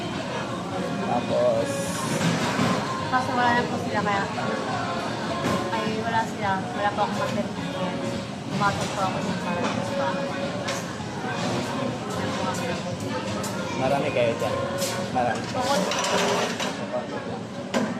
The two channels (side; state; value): both; identical; correlation 1.00